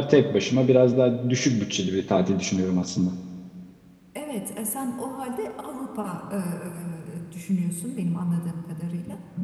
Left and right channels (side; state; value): both; identical; correlation 1.00